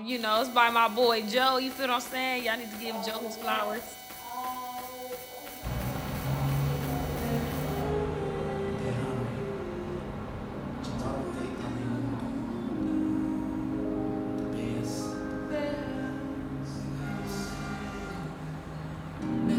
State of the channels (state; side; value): identical; both; correlation 1.00